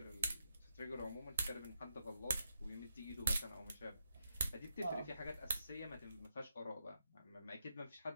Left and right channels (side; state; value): both; inverted; correlation -0.83